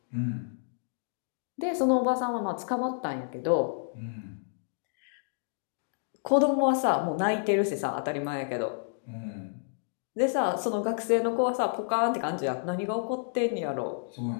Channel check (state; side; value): silent; right; digital silence